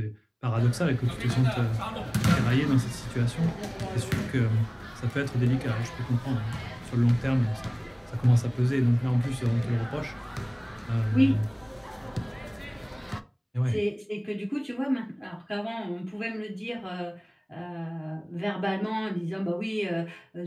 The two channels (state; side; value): identical; both; correlation 1.00